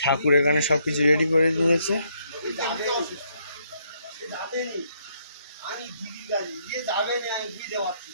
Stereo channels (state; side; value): inverted; both; correlation -0.72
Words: ঠাকুর এখানে সবকিছু রেডি করে নিয়েছে।